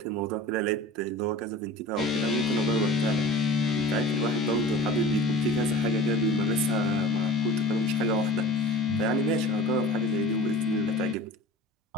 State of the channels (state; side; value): normal; both; correlation 0.40